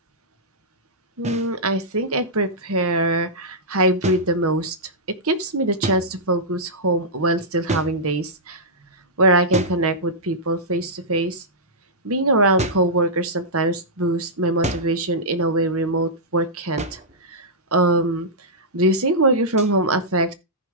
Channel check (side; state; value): both; normal; correlation -0.12